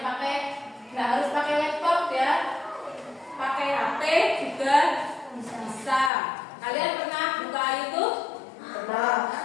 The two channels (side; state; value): right; drops out; at 6.1 s